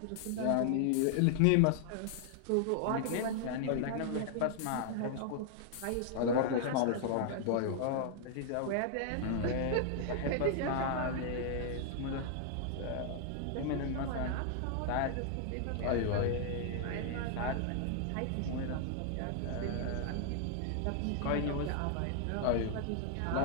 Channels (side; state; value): both; different; correlation 0.00